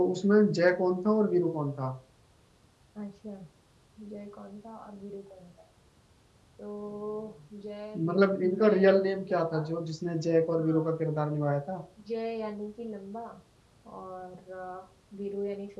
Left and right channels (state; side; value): identical; both; correlation 1.00